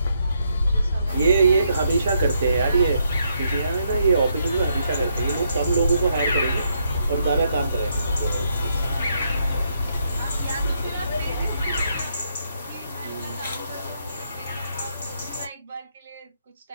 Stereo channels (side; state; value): both; inverted; correlation -0.76